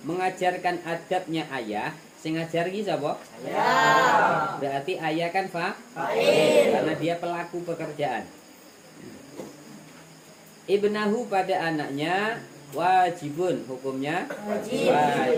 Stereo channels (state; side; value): identical; both; correlation 1.00